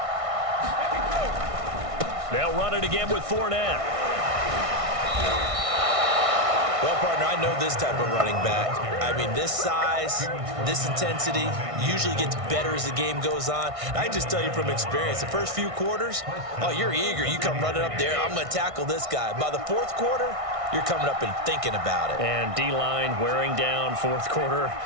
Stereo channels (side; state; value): left; late; 1.6 ms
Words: They'll run it again with Fournette. Well, partner, I know this type of running back. I mean, this size, this intensity usually gets better as the game goes on. I can just tell you from experience, the first few quarters, oh, you're eager. You come running up there, I'm going to tackle this guy. By the 4th quarter, you're coming up and thinking about it. And D-line wearing down 4th quarter.